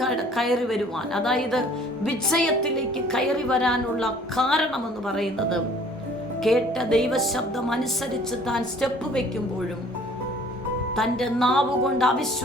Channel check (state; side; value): normal; both; correlation 0.54